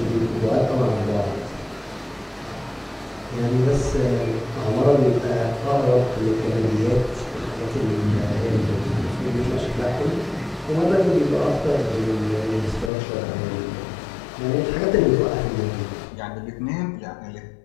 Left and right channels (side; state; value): right; drops out; at 12.9 s